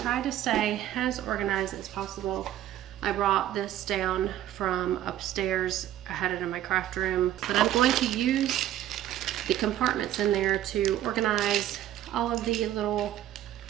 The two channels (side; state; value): left; quieter; 12.5 dB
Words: try to stay as organized as possible, I brought this down from upstairs. I had it in my craft room, but I'm going to use the compartments in there to organize all of the little